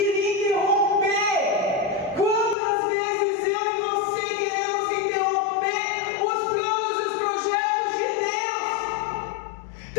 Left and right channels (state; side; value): drops out; right; at 2.6 s